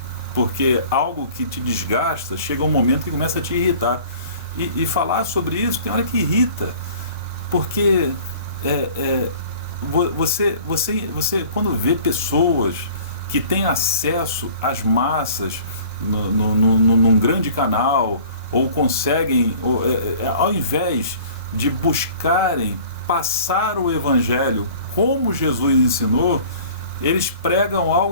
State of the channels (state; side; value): inverted; both; correlation -0.48